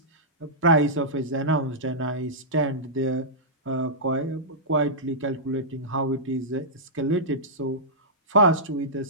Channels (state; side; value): normal; both; correlation -0.14